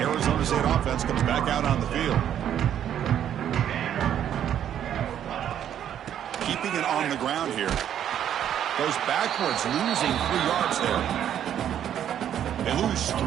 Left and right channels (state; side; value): quieter; left; 10.0 dB